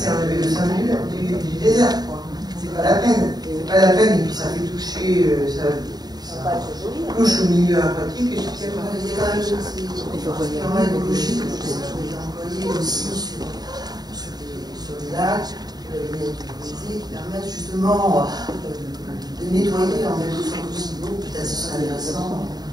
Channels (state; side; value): late; left; 0.19 ms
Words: enlever le sang du désert. C'est pas la peine. C'est pas la peine, et puis ça fait toucher, ça touche au milieu aquatique. Et il y a quand même des écologiques qui sont employés aussi sur les lacs, qui permettent justement de nettoyer en quelque sorte aussi l'eau, peut-être ce serait intéressant.